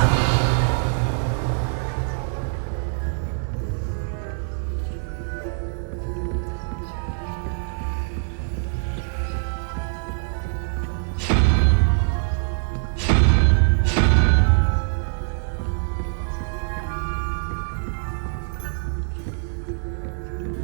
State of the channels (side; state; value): left; silent; digital silence